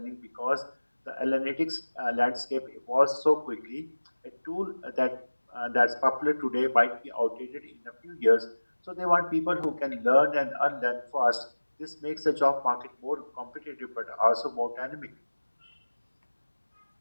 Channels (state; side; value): inverted; both; correlation -1.00